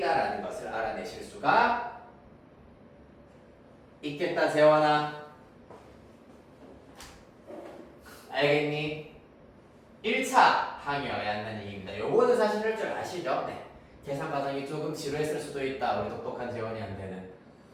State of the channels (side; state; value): both; identical; correlation 1.00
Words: 것을 알아내실 수가 있겠다. 재원아 알겠니? 1차 항이어야 한다는 얘기입니다. 요거는 사실 할 줄 아시죠? 네. 계산 과정이 조금 지루했을 수도 있다. 우리 똑똑한 재원이한테는.